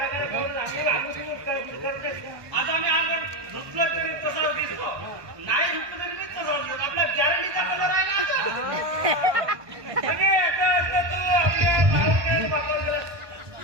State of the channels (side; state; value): left; late; 1.2 ms